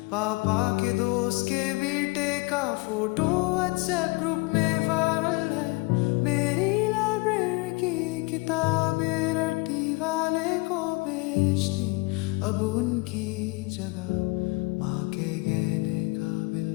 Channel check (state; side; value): quieter; right; 25.5 dB